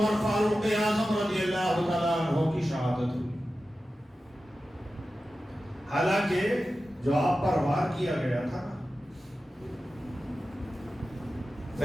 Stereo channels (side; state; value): both; normal; correlation 0.93